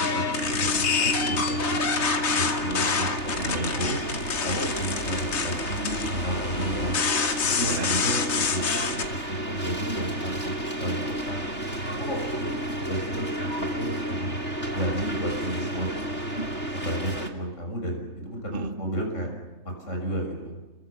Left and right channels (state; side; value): late; right; 3.3 ms